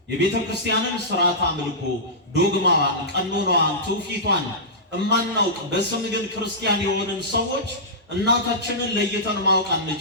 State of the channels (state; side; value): normal; both; correlation -0.17